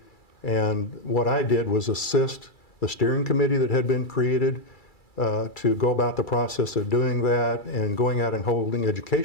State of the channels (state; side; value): late; right; 2.3 ms